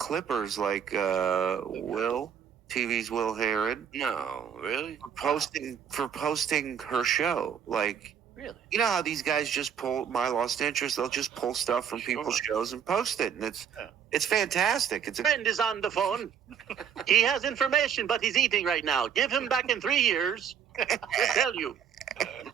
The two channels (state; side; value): quieter; left; 8.1 dB